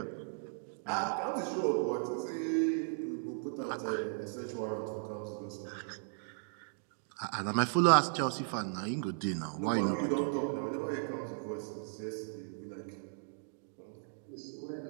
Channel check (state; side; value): silent; left; digital silence